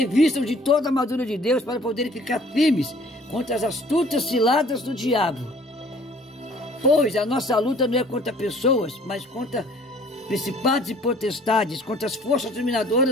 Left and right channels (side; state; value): both; normal; correlation 0.54